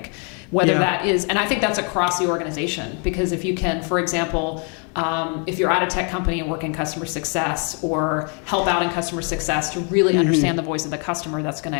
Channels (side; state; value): right; quieter; 38.2 dB